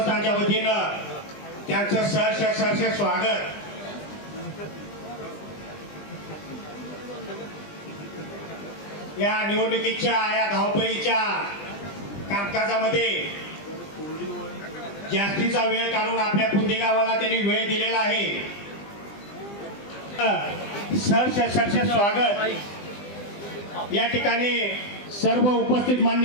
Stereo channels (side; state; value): right; late; 20 ms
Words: वतीनं त्यांचं सहर्ष स्वागत. या निवडणुकीच्या या धावपळीच्या कामकाजामध्ये जास्तीचा वेळ काढून आपल्या पुंदी गावाला त्यांनी वेळ दिलेला आहे. सहर्ष स्वागत. या ठिकाणी सर्व उपस्थित